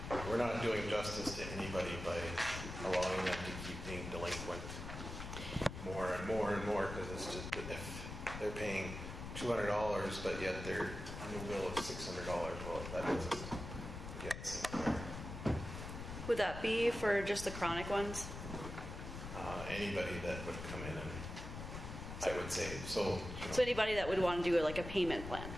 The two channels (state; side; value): noise; left; rumble, 8 dB below the sound